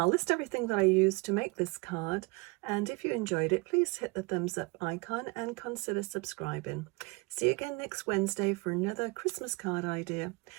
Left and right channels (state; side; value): quieter; left; 27.0 dB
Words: list everything that I used to make this card, and if you enjoyed it, please hit the thumbs up icon and consider subscribing. See you again next Wednesday for another Christmas card idea.